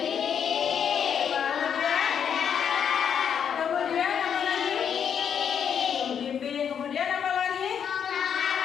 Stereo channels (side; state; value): right; quieter; 7.9 dB